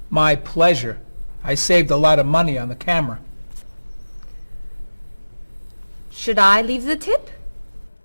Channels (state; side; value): inverted; both; correlation -1.00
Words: My pleasure. I saved a lot of money on the camera. Should I leave the tip?